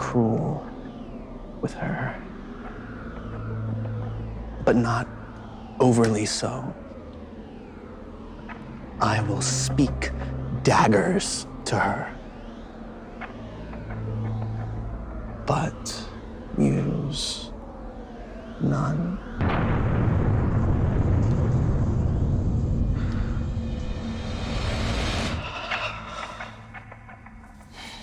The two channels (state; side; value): identical; both; correlation 1.00